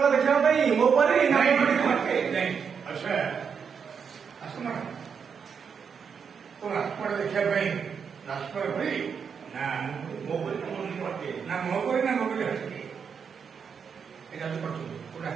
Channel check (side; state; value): left; quieter; 6.5 dB